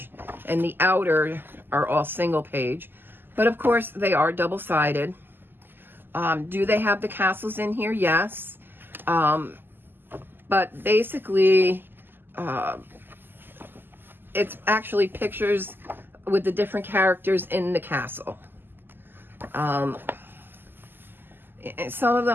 and the outer are all single page, but of course they are double-sided. Do they have the castles in here? Yes. But basically it's actually pictures with the different characters in the castle. Some of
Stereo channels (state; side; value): late; left; 0.096 ms